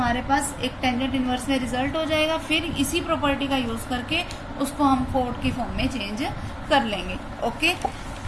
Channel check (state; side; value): identical; both; correlation 1.00